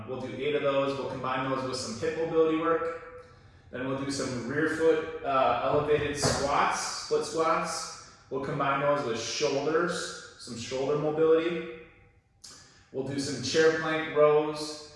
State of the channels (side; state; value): both; identical; correlation 1.00